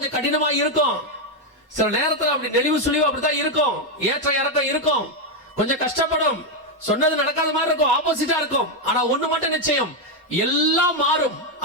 கடினமா இருக்கும். சில நேரத்துல அப்படி நெளிவு சுழிவு அப்படித்தான் இருக்கும், ஏற்ற இறக்கம் இருக்கும், கொஞ்சம் கஷ்டப்படும், சொன்னது நடக்காத மாதிரி இருக்கும், ஆப்போசிட்டா இருக்கும். ஆனா ஒண்ணு மட்டும் நிச்சயம், எல்லாம் மாறும்.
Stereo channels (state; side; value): normal; both; correlation 0.04